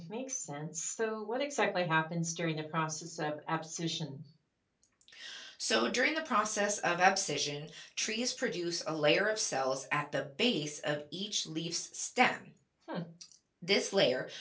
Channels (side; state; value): both; identical; correlation 1.00